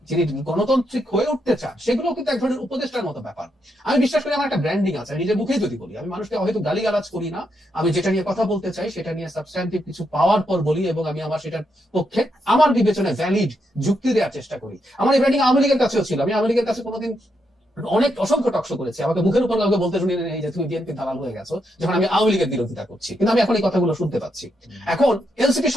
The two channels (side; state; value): both; normal; correlation 0.81